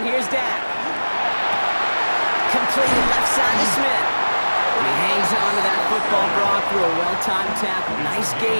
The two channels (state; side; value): inverted; both; correlation -1.00